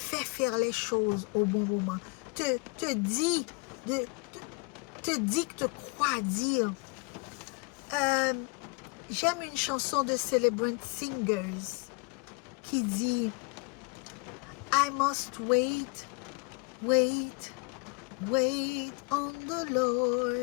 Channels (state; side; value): quieter; right; 29.2 dB